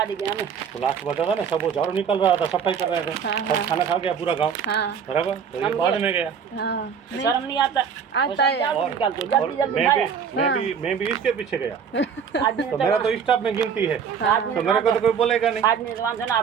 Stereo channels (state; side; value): quieter; left; 7.0 dB